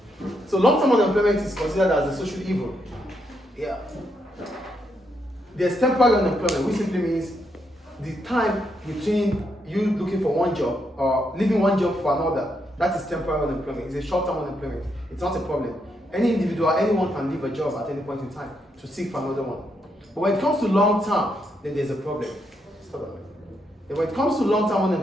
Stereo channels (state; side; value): normal; both; correlation 0.79